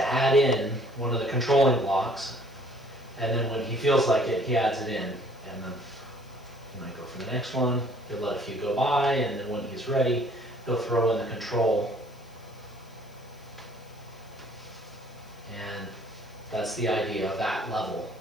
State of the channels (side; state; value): left; noise; hiss, 29 dB below the sound